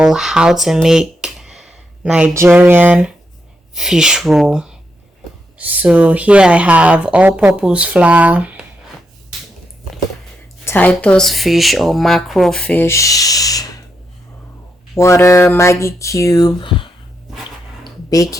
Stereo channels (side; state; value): both; normal; correlation 0.82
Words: how to make Nigerian fish roll. So here I have all-purpose flour, Titus fish or mackerel fish, water, Maggi cube,